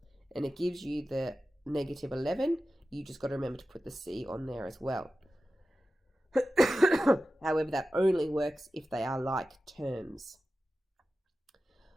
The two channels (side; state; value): both; normal; correlation 0.94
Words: and it gives you the negative 11. You just got to remember to put the c on there as well. However, that only works if they are like terms.